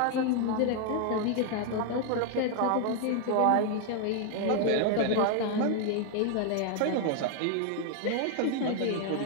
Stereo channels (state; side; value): different; both; correlation 0.00